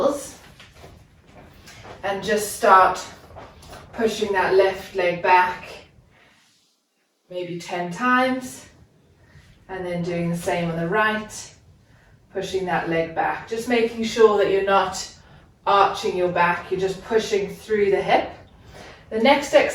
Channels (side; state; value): both; identical; correlation 1.00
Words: and just start pushing that left leg back maybe 10 times, and then doing the same on the right, pushing that leg back. Just making sure that you're not arching your back, you're just pushing through the hip. The next